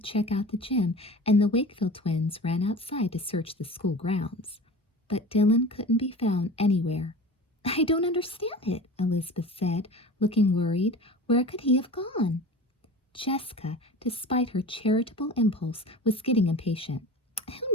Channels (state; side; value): normal; both; correlation 0.36